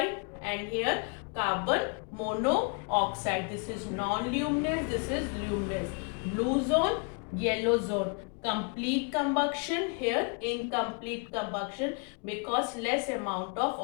and here carbon monoxide. This is non-luminous, this is luminous. Blue zone, yellow zone. Complete combustion, here incomplete combustion because less amount of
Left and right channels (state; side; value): quieter; right; 36.8 dB